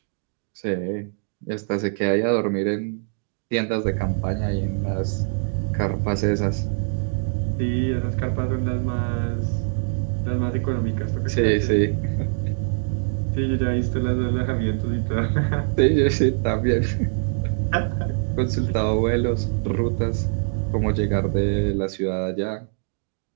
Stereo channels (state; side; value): silent; left; digital silence